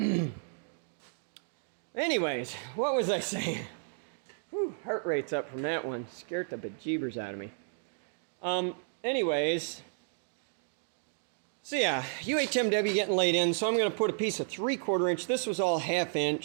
Anyways, what was I saying? Whew, heart rate's up from that one. Scared the bejeebers out of me. Anyways, So yeah, UHMW getting laid in, so I'm going to put a piece of 3/4 inch. This was all 1/2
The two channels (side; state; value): left; silent; digital silence